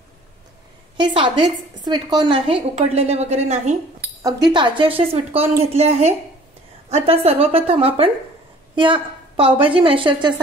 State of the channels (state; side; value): normal; both; correlation 0.51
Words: हे साधेच स्वीटकॉर्न आहे, उकडलेले वगैरे नाही, अगदी ताजे असे स्वीटकॉर्न घेतले आहे। आता सर्वप्रथम आपण या पावभाजी मॅशरच्या